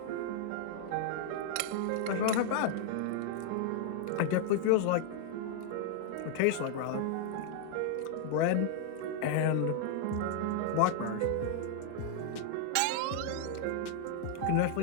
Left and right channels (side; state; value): both; different; correlation -0.01